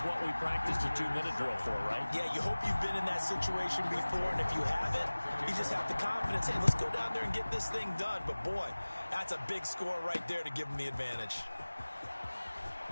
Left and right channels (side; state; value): both; inverted; correlation -1.00